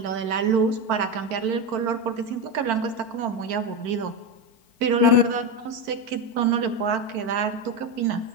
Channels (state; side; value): late; left; 4.5 ms